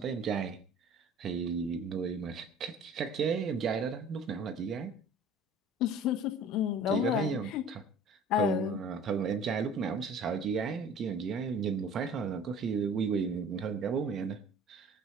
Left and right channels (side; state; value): both; normal; correlation 0.46